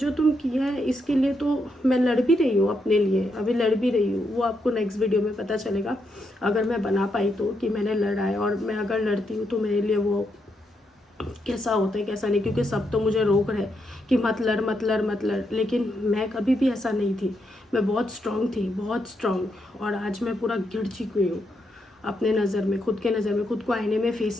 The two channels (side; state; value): both; normal; correlation 0.80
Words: तुम किया है इसके लिए तो मैं लड़ भी रही हूँ अपने लिए, अभी लड़ भी रही हूँ। वो आपको नेक्स्ट वीडियो में पता चलेगा अगर मैं बना पाई तो, कि मैंने लड़ा है। और मैं अगर लड़ती हूँ तो मेरे लिए वो कैसा होता है कैसा नहीं, क्योंकि सब तो मुझे रोक रहे कि मत लड़ मत लड़ मत लड़, लेकिन मैं कभी भी ऐसा नहीं थी। मैं बहुत स्ट्रांग थी, बहुत स्ट्रांग। और आज मैं पूरा गिर चुकी हूँ अपने नज़र में, खुद के नज़र में, खुद को आईने में फेस